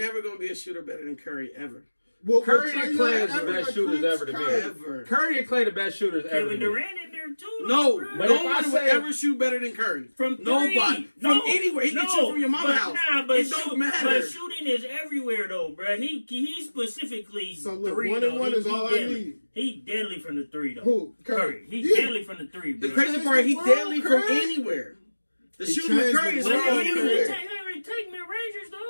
going to be a shooter better than Curry ever. Well, Curry and Clay is the best shooters ever to me. Ever. Curry and Clay the best shooters ever to me. Kevin Durant in there too. No, nobody would ever shoot better than Curry. From three. Nobody. From anywhere. He can shoot from your mama's house. It don't matter. But shooting is everywhere though, bro. He specifically so look, 3 1 and 1 is all I need. He deadly from the 3 though. Who? Curry. He's deadly from the 3, bro. The crazy part, he deadly from anywhere. The shooting with Curry is from anywhere. Take mid-rangers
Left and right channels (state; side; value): inverted; both; correlation -1.00